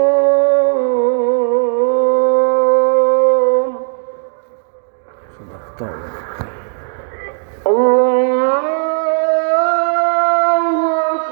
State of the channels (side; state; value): left; silent; digital silence